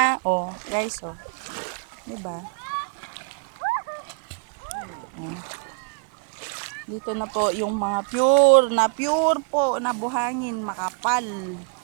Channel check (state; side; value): quieter; left; 39.4 dB